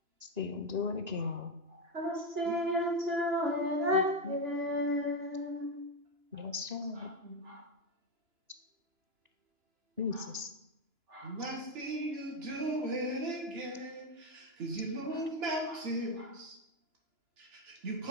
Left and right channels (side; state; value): left; late; 2.9 ms